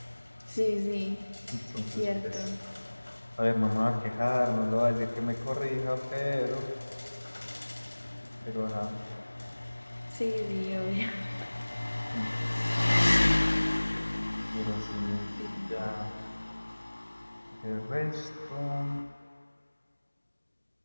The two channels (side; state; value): both; inverted; correlation -1.00